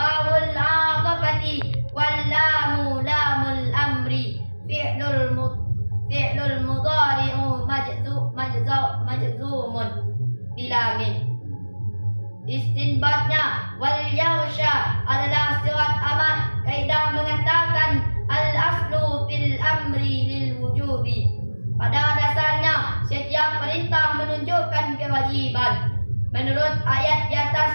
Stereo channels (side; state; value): both; inverted; correlation -1.00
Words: aqafati wal lamu lamul amri fi'lul mudhari'u majzumun bilamin. Istinbatnya wal yausha adalah sifat amar. Kaidah mengatakan al-aslu fil amri lil wujubi. Pada dasarnya setiap perintah menunjukkan kewajiban. Menurut ayat di